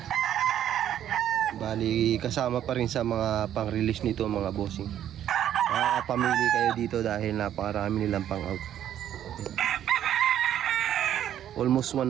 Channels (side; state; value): left; quieter; 10.8 dB